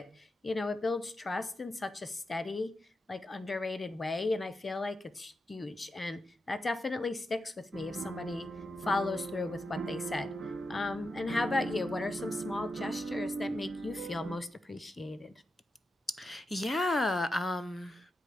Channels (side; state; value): both; normal; correlation 0.88